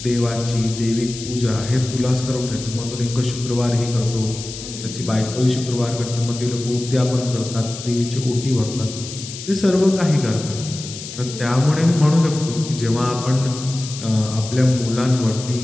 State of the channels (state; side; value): noise; left; hiss, 11 dB below the sound